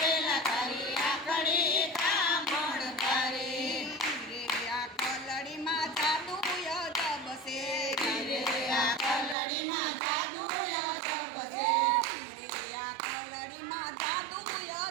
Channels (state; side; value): drops out; left; at 9.3 s